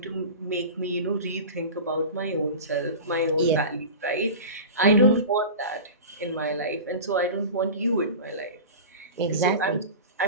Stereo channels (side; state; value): both; inverted; correlation -0.32